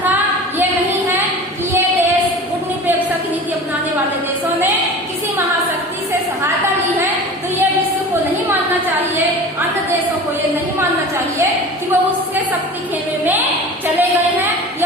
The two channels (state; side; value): normal; both; correlation 0.37